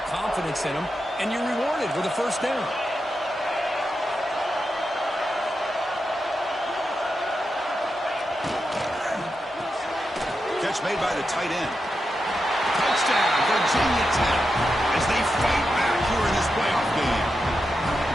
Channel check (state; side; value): normal; both; correlation 0.88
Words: confidence in them. And you're rewarded with a first down. Catch made by the tight end. Touchdown, Virginia Tech, as they fight back here in this playoff game.